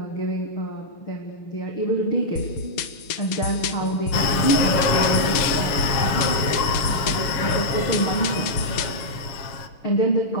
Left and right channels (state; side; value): late; right; 7.3 ms